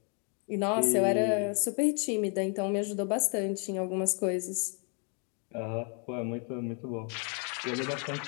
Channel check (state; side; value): quieter; right; 38.6 dB